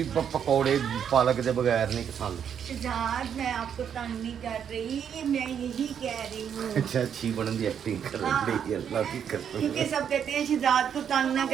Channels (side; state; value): left; quieter; 8.3 dB